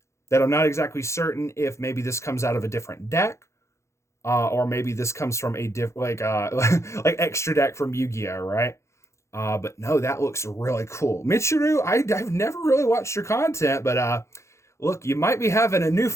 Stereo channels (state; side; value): late; right; 0.14 ms